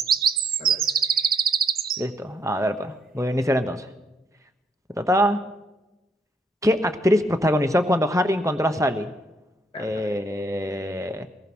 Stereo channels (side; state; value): both; normal; correlation 0.72